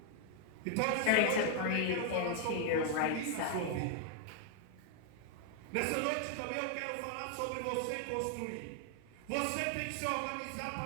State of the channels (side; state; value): both; different; correlation 0.00